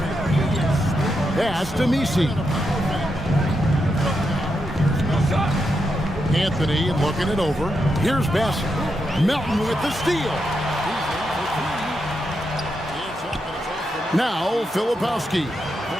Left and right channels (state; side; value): normal; both; correlation 0.84